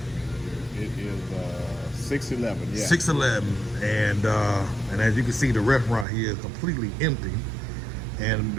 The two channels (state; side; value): drops out; left; at 6.1 s